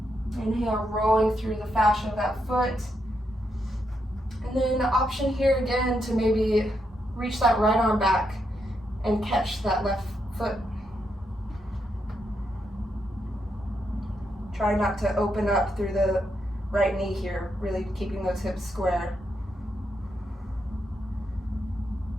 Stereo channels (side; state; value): both; normal; correlation 0.81